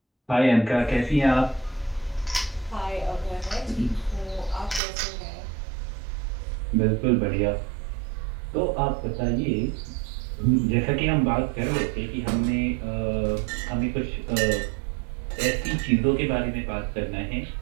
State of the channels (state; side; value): drops out; left; at 4.8 s